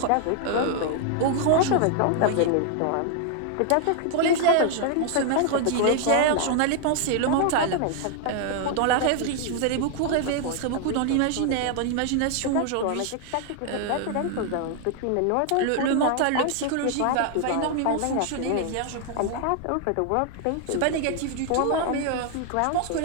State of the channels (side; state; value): both; different; correlation 0.00